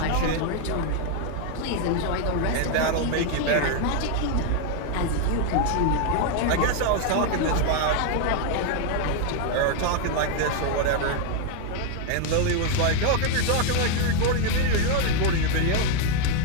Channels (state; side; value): different; both; correlation 0.01